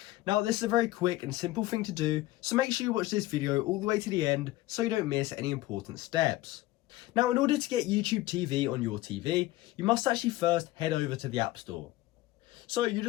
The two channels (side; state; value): right; quieter; 17.5 dB